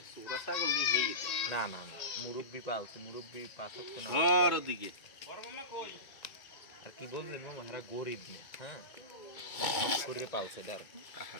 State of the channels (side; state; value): right; late; 2.2 ms